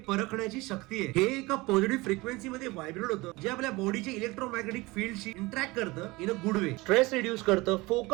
शक्ती आहे. हे एका पॉझिटिव्ह फ्रिक्वेन्सी मध्ये व्हायब्रेट होतं जे आपल्या बॉडीच्या इलेक्ट्रोमॅग्नेटिक फील्डशी इंटरॅक्ट करतं in a good way. Stress reduce करतं,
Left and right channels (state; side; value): quieter; left; 22.3 dB